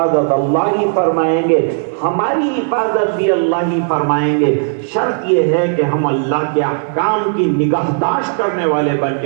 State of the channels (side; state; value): left; silent; 70 dB below the other